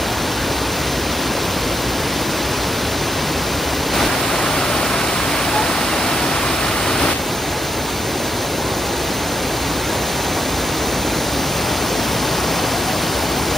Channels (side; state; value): both; normal; correlation 0.81